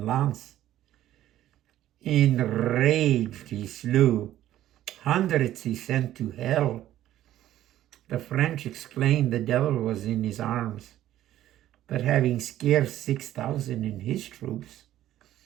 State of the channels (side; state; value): left; quieter; 13.1 dB